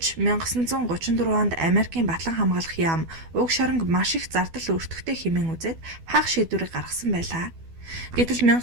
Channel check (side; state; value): left; late; 12 ms